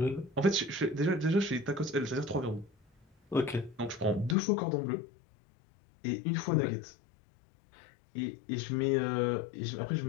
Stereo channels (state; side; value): drops out; right; at 4.4 s